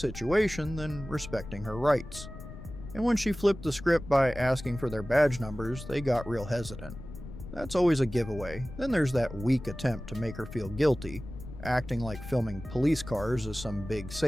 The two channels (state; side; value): noise; left; rumble, 12 dB below the sound